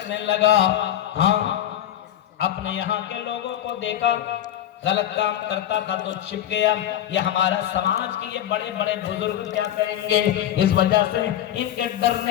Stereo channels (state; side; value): quieter; right; 11.6 dB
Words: लगा। हाँ, अपने यहाँ के लोगों को देखा गलत काम करता था तो छिप गया। ये हमारा समाज के ये बड़े बड़े बुजुर्ग क्या कहेंगे, इस वजह से